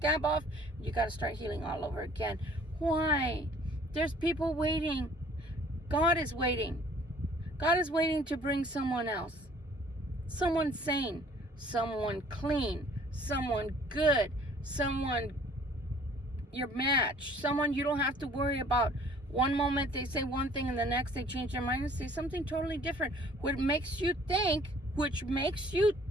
off, you got to start healing all over again. Why? There's people waiting. God is waiting. God is waiting to bring someone else. Someone sane, someone clean, someone good, someone your match, someone you don't have to worry about. One moment they say one thing and the next they change their mind and say something totally different, which makes you think,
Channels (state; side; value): normal; both; correlation 0.55